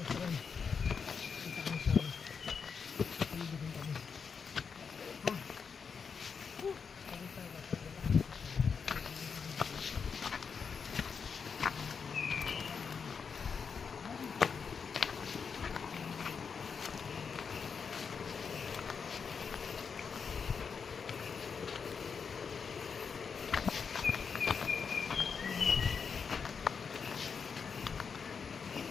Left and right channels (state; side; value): quieter; right; 5.9 dB